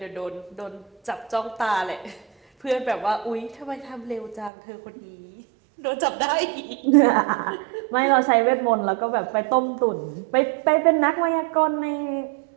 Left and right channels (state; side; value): drops out; left; at 4.5 s